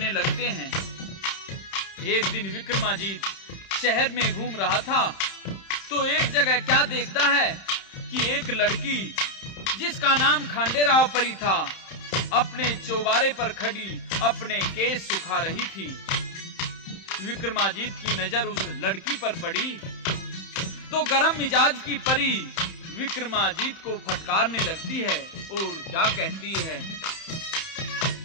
लगते हैं। एक दिन विक्रमाजीत शहर में घूम रहा था तो एक जगह क्या देखता है कि एक लड़की जिसका नाम खांडेराव परी था अपने चौबारे पर खड़ी अपने केस सुखा रही थी। विक्रमाजीत की नजर उस लड़की पर पड़ी तो गरम मिजाज की परी विक्रमाजीत को फटकारने लगती है और क्या कहती है,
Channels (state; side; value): late; right; 31 ms